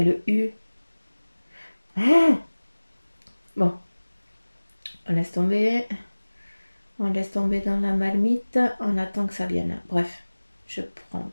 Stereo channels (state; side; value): inverted; both; correlation -1.00